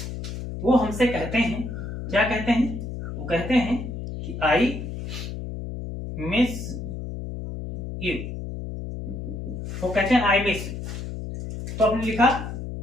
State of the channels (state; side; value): noise; left; hum, 7 dB below the sound